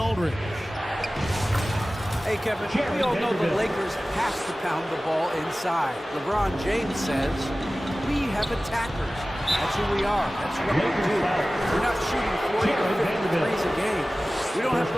Hey, Kevin, we all know the Lakers have to pound the ball inside. LeBron James says, we have attackers. That's who we are. That's what we do. We're not shooting 40 or 50 threes a game. We don't have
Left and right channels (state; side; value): normal; both; correlation 0.97